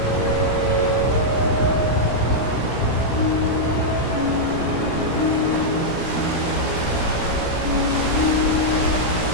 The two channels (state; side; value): late; right; 17 ms